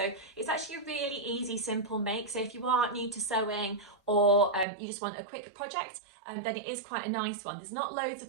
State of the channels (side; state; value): left; drops out; at 4.7 s